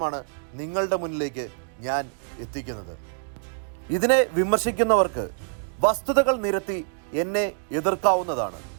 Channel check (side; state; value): left; silent; 61 dB below the other